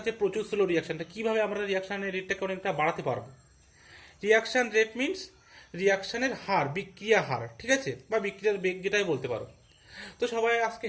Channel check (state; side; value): identical; both; correlation 1.00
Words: প্রচুর স্লো রিয়াকশনটা, কিভাবে আমরা রিয়াকশনের রেটটাকে অনেকটা বাড়াতে পারবো। রিয়াকশন রেট মিনস রিয়াকশনের হার, বিক্রিয়া হার। ঠিক আছে, বা বিক্রিয়ার বেগ যেটাই বলতে পারো। তো সবাই আজকে